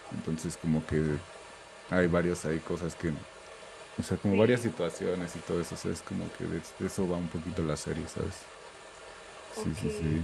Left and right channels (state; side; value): identical; both; correlation 1.00